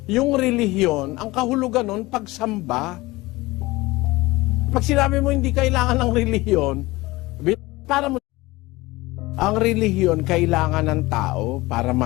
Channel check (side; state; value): right; quieter; 20.6 dB